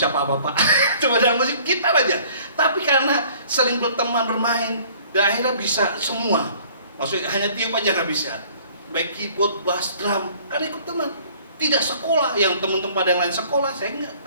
apa-apa, cuma dalam musik gitar aja. Tapi karena sering berteman, bermain, dan akhirnya bisa semua. Maksudnya hanya tiup aja nggak bisa. Baik keyboard, bass, drum, kan ikut teman. Tidak sekolah, yang teman-teman yang lain sekolah, saya enggak,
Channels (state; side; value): inverted; both; correlation -0.54